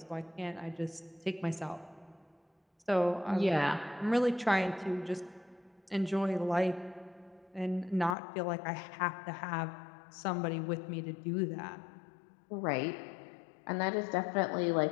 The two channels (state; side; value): drops out; right; at 8.2 s